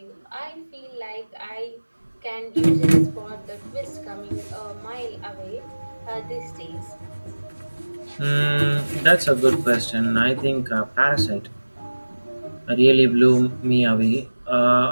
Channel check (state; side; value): inverted; both; correlation -1.00